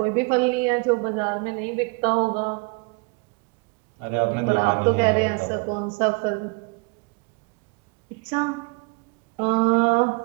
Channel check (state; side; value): quieter; left; 31.1 dB